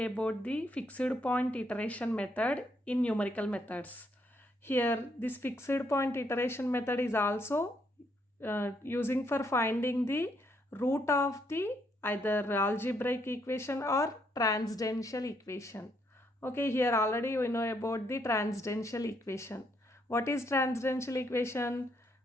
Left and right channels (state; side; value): normal; both; correlation 0.73